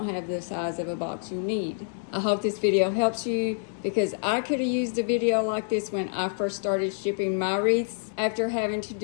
have the size of a box you need. I hope this video helps you, because I could have used a video like this when I first started shipping my wreaths. After having to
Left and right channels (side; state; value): right; silent; digital silence